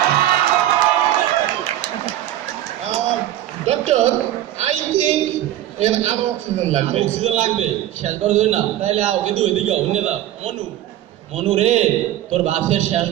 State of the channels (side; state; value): left; quieter; 13.3 dB